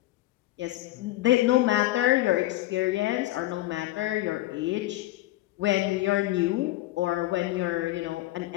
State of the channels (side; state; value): right; quieter; 16.8 dB